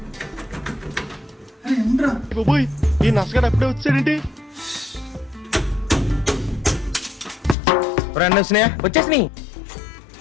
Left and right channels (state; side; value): drops out; right; at 7.6 s